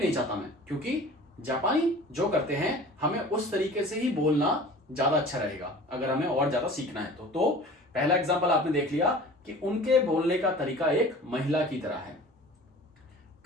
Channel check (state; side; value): normal; both; correlation 0.42